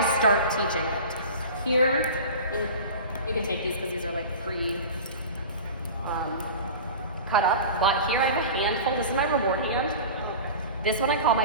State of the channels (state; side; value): inverted; both; correlation -0.34